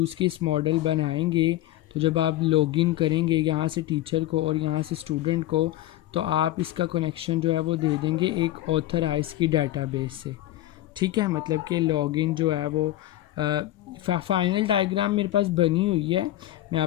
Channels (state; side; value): quieter; right; 14.8 dB